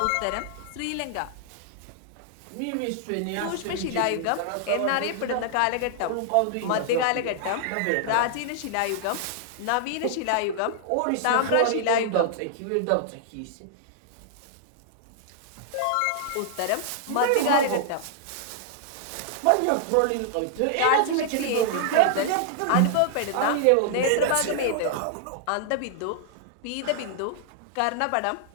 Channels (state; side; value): different; both; correlation -0.01